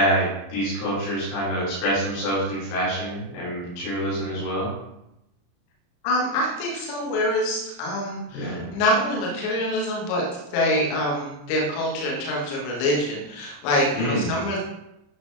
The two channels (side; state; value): right; late; 34 ms